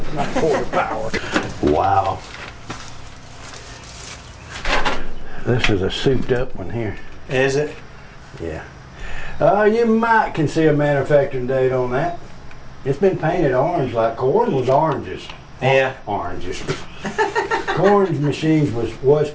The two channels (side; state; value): both; identical; correlation 1.00